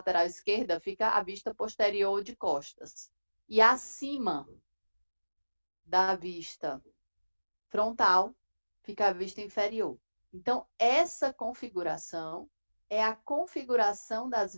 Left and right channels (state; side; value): inverted; both; correlation -1.00